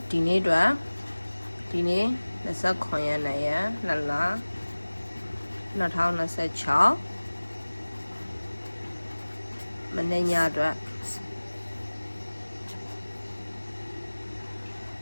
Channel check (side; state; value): both; inverted; correlation -1.00